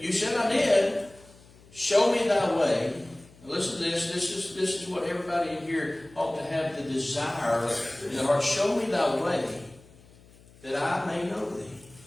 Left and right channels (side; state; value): left; noise; hum, 25 dB below the sound